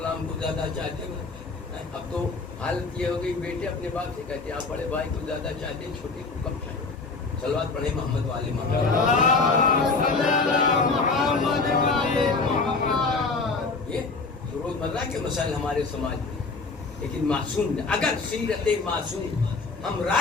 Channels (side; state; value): right; quieter; 4.0 dB